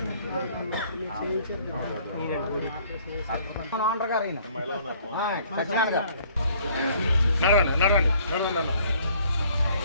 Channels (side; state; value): both; inverted; correlation -0.59